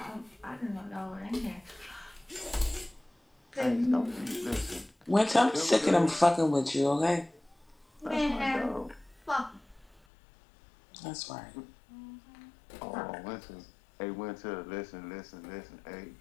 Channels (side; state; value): right; drops out; at 10.0 s